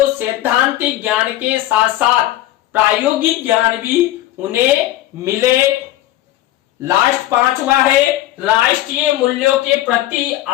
सैद्धांतिक ज्ञान के साथ साथ प्रायोगिक ज्ञान भी उन्हें मिले। लास्ट पांचवा है, राष्ट्रीय मूल्यों के प्रति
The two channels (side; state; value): right; quieter; 14.7 dB